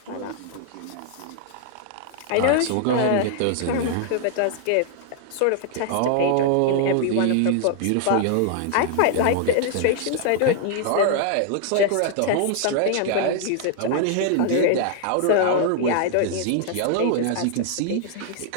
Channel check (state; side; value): different; both; correlation 0.00